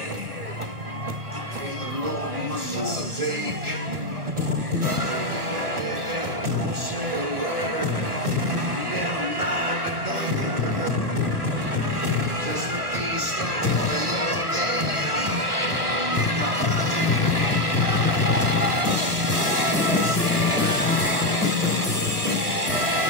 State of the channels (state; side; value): late; left; 1.3 ms